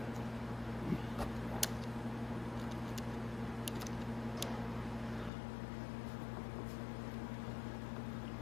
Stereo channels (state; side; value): drops out; right; at 5.3 s